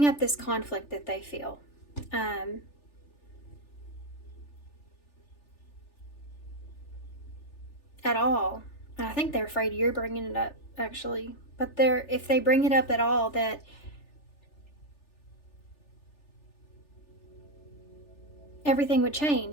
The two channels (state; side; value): late; right; 3.4 ms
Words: up this conflict that they feel, at all, and I think they're afraid you're bringing it up, actually, but if they bring it up at all, that everything would